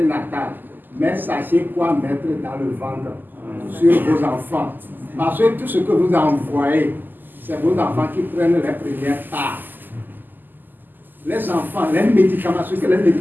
mais sachez quoi mettre dans le ventre sur vos enfants. Parce que tout ce que vous envoyez, c'est vos enfants qui prennent les premières parts. Les enfants, les médicaments, ce que les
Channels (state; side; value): late; left; 0.089 ms